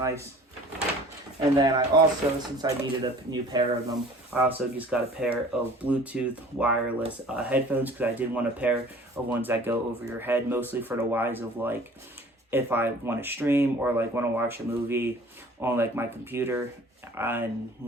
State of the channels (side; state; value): both; normal; correlation 0.48